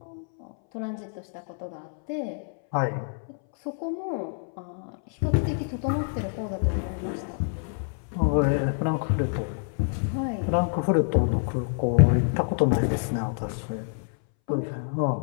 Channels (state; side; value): silent; right; 60 dB below the other